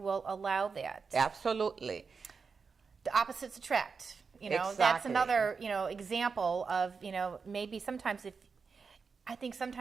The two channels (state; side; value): quieter; left; 5.2 dB